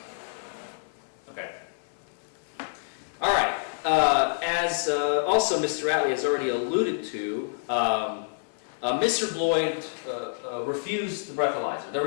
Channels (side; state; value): right; silent; 60 dB below the other